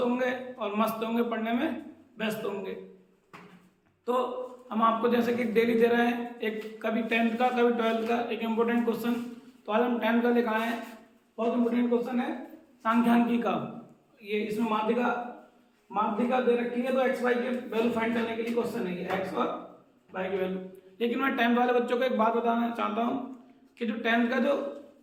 होंगे और मस्त होंगे, पढ़ने में व्यस्त होंगे। तो हम आपको जैसे कि डेली दे रहे हैं, एक कभी 10th का कभी 12th का एक इम्पोर्टेंट क्वेश्चन। तो आज हम 10th का लेकर आए हैं। बहुत इम्पोर्टेंट क्वेश्चन है सांख्यिकी का। ये इसमें माध्यिका दे रखी है, तो एक्स वाई के वैल्यू फाइंड करने के लिए क्वेश्चन है, ये एक्स और वाई की वैल्यू। लेकिन मैं 10th वाले बच्चों को एक बात बताना चाहता हूँ कि जो 10th का जो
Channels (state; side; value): identical; both; correlation 1.00